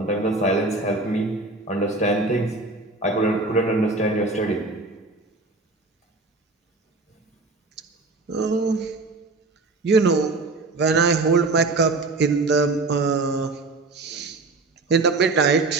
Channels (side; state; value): left; quieter; 3.4 dB